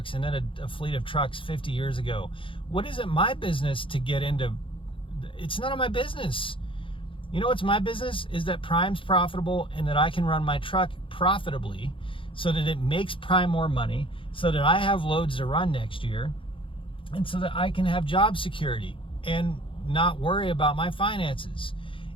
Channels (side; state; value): right; late; 0.25 ms